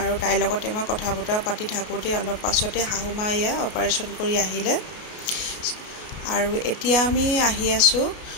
তাইৰ লগতে মই কথা বতৰা পাতি থাকোঁতে অলপ পাছতে শাহুমা এয়া অপাৰেশ্যন কৰি আহিলে আৰু এতিয়া আমি আহি আছোঁ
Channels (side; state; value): right; late; 33 ms